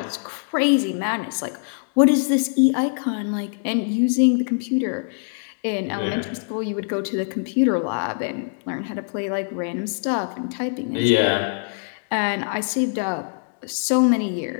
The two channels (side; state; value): right; silent; digital silence